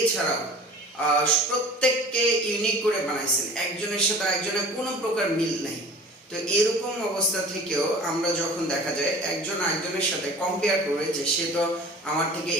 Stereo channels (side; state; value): both; normal; correlation 0.43